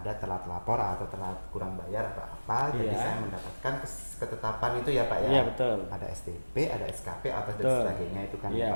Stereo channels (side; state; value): both; inverted; correlation -1.00